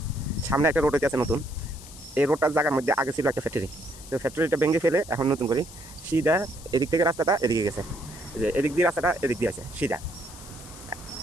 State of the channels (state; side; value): noise; left; hiss, 17 dB below the sound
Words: সামনে একটা রোড হইতে আছে নতুন। এই রোডটার জায়গার মধ্যে আগে ছিল একটা ফ্যাক্টরি, তো ফ্যাক্টরিটা ভেঙে ফেলে এখন নতুন করে সিধা এদিক থেকে রাস্তাটা এদিকে গেছে। যে এদিক দিয়ে রাস্তাটা এদিক দিয়ে আছে সিধা।